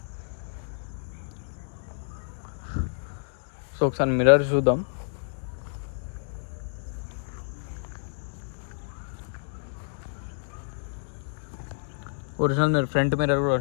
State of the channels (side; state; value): right; silent; 59 dB below the other